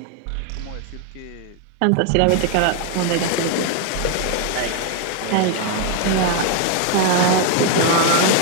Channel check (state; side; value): different; both; correlation 0.01